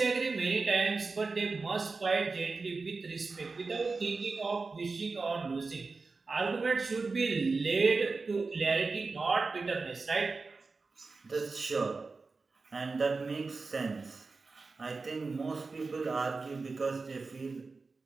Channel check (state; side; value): quieter; left; 4.1 dB